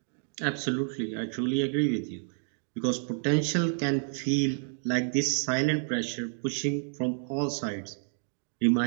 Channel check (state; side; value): silent; left; 58 dB below the other